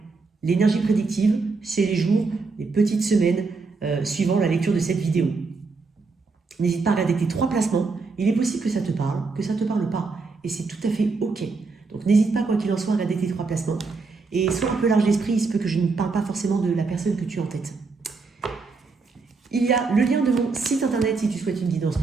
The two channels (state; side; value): quieter; left; 4.2 dB